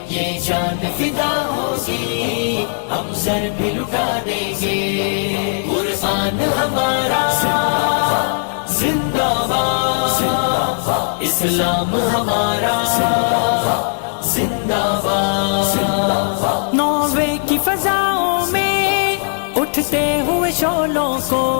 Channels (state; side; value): silent; right; digital silence